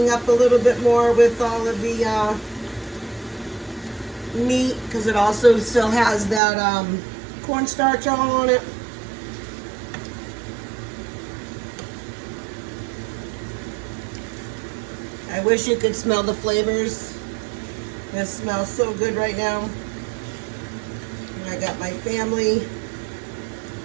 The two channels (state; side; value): drops out; left; at 6.4 s